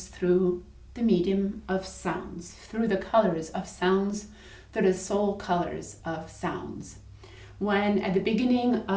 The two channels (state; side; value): identical; both; correlation 1.00